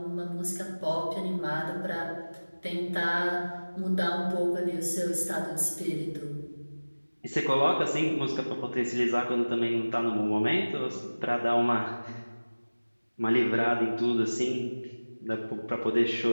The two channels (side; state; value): both; inverted; correlation -1.00